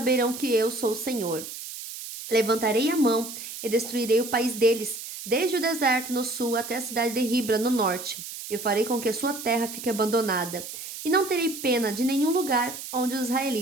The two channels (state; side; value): noise; right; hiss, 10 dB below the sound